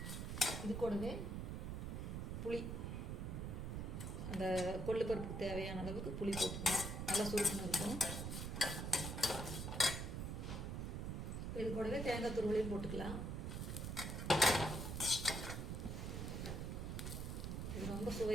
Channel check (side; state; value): right; noise; rumble, 3 dB below the sound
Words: இது கூடவே புளி, அந்த கொள்ளு பருப்புக்கு தேவையான அளவுக்கு புளி போட்டுக்கணும். நல்லா சுருக்கணும் இருக்கும். இது கூடவே தேங்காய் துருவலையும் போட்டுக்கலாம். இது ரொம்ப